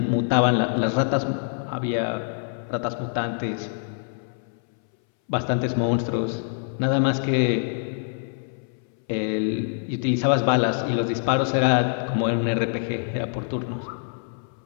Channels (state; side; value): silent; right; 61 dB below the other